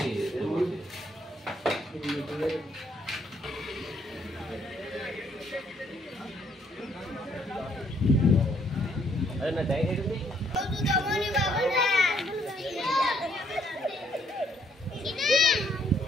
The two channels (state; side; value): normal; both; correlation 0.69